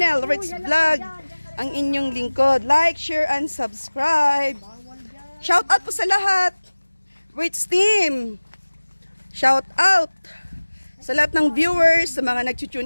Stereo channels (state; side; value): inverted; both; correlation -1.00